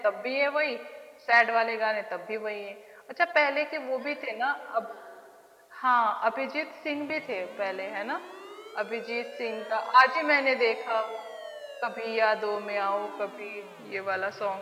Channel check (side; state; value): both; identical; correlation 1.00